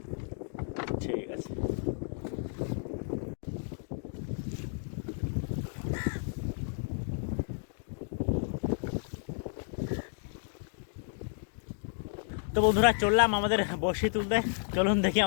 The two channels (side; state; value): right; silent; 56 dB below the other